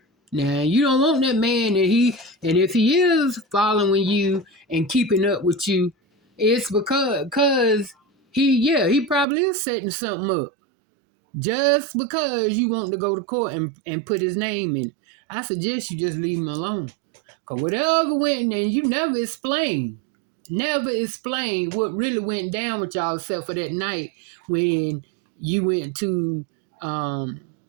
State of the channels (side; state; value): left; drops out; at 9.2 s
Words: Now you don't want that man and if he is following you and keeping up with you, it's because he probably is setting something up. Just because you want to go to court and put his name in it. I suggest you just leave him alone. Because whatever went, and you never explained what really went down with y'all except for that night when you went to